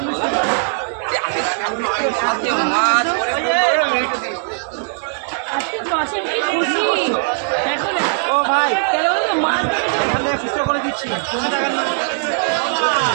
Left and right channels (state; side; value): silent; left; digital silence